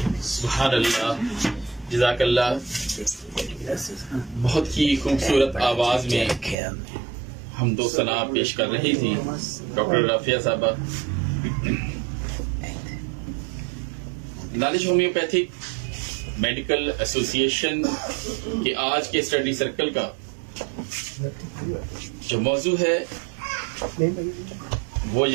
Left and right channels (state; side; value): drops out; left; at 6.6 s